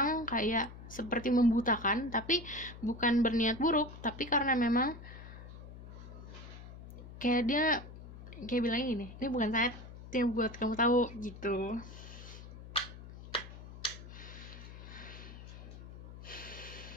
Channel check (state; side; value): noise; left; hum, 14 dB below the sound